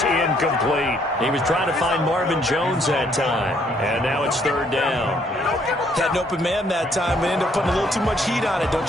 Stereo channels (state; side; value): normal; both; correlation 0.67